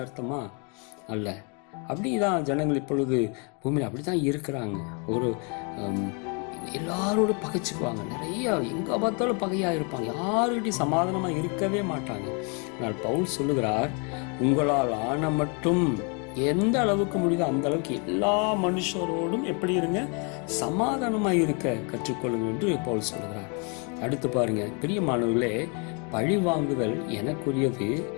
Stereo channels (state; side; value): quieter; right; 35.6 dB